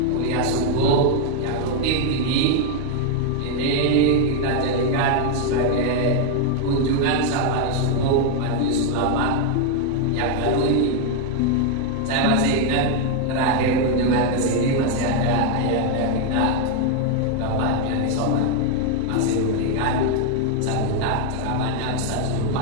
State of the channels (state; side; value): different; both; correlation 0.01